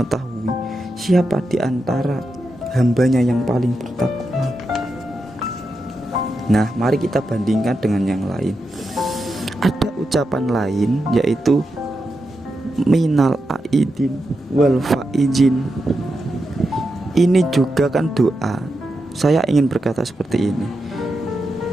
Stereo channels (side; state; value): both; normal; correlation 0.87